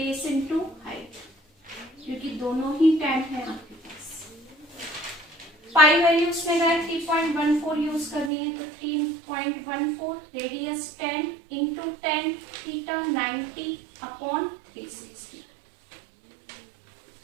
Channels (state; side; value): drops out; left; at 8.3 s